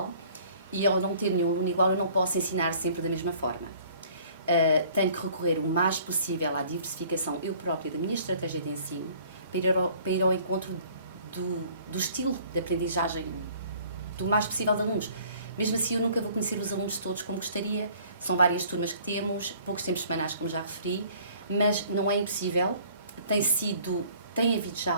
e ao não ter nenhum aluno igual eu não posso ensinar sempre da mesma forma. Tenho que recorrer o mais possível à diversificação eu própria da minha estratégia de ensino para ir ao encontro do estilo de aprendizagem do mais possível de alunos. Mesmo assim, eu nunca vou conhecer os alunos todos como gostaria, são várias turmas que temos, poucos tempos semanais, como já referi, mas não é impossível, tem havido já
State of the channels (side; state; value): both; inverted; correlation -0.54